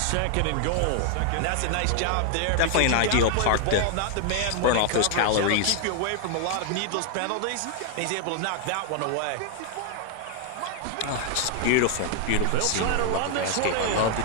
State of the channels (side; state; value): both; different; correlation 0.00